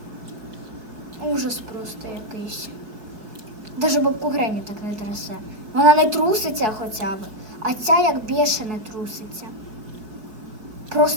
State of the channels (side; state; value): left; late; 4.6 ms